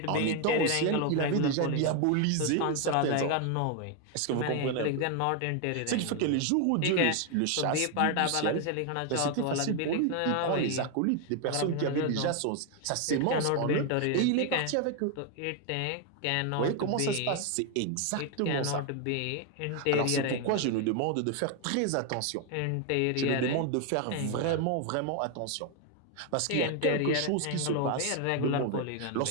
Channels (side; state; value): both; different; correlation 0.01